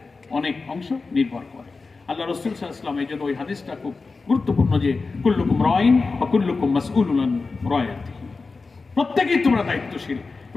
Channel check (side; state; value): right; quieter; 4.1 dB